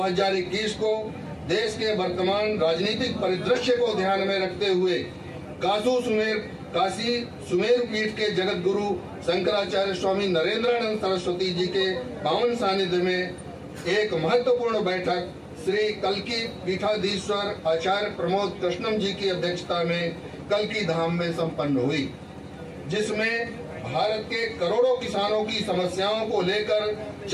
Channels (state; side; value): identical; both; correlation 1.00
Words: को देश के वर्तमान राजनीतिक परिदृश्य को ध्यान में रखते हुए काशी सुमेर पीठ के जगत गुरु शंकराचार्य स्वामी नरेंद्रानंद सरस्वती जी के पावन सानिध्य में एक महत्वपूर्ण बैठक श्री कल्की पीठाधीश्वर आचार्य प्रमोद कृष्णम जी की अध्यक्षता में कल्की धाम में संपन्न हुई, जिसमें भारत के करोड़ों किसानों की समस्याओं को लेकर